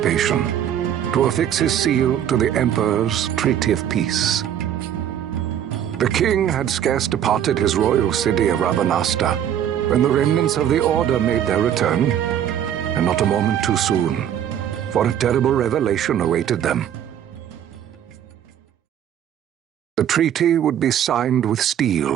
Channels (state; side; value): quieter; left; 10.1 dB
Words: to affix his seal to the Emperor's Treaty of Peace. The king had scarce departed his royal city of Rabanasta when the remnants of the Order made their return, and not a moment too soon, for a terrible revelation awaited them. The treaty would be signed with